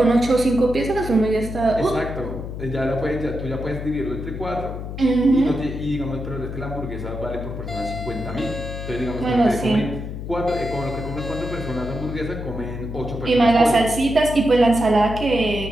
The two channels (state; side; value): noise; left; hum, 7 dB below the sound